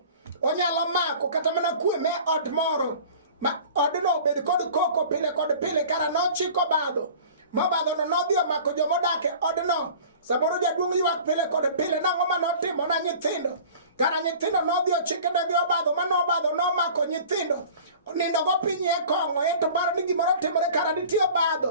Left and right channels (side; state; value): both; inverted; correlation -0.43